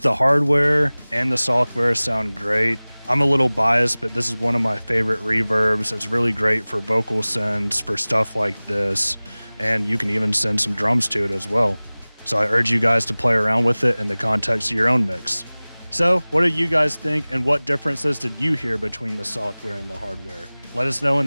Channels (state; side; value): inverted; both; correlation -1.00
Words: the hardware and the software sound great. I'm a little biased, but this is one of my favorite reverbs. It's really great for vocal sends, for stuff like this, and you can even send some drums to it as well. So I urge you guys to play around with it in the context of your own mix. So what do you guys think, and what differences did you hear between the software and the hardware? Let us know in